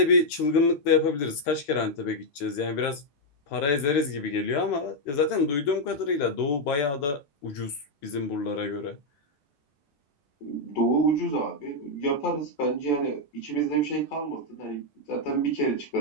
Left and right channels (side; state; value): right; late; 14 ms